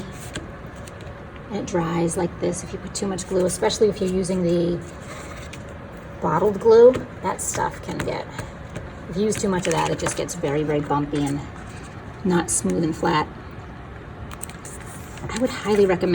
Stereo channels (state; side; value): identical; both; correlation 1.00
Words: And it dries like this if you put too much glue, especially if you're using the bottled glue. That stuff can get, if you use too much of that, it just gets very, very bumpy and not smooth and flat. I would highly